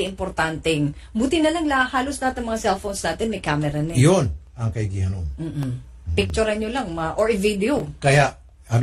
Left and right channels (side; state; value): both; identical; correlation 1.00